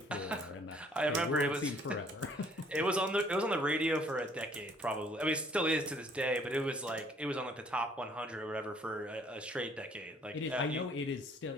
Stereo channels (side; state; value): both; normal; correlation 0.60